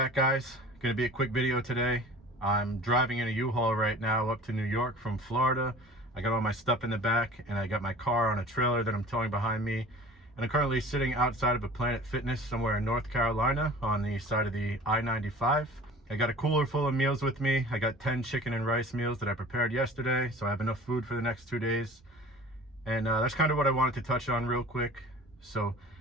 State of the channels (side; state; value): both; normal; correlation 0.42